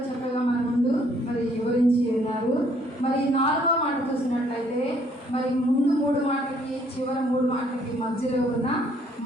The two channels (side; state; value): both; normal; correlation 0.65